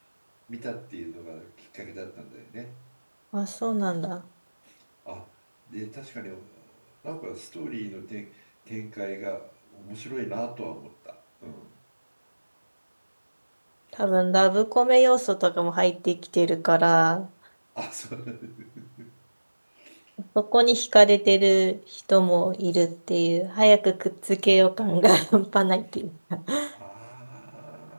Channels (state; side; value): inverted; both; correlation -1.00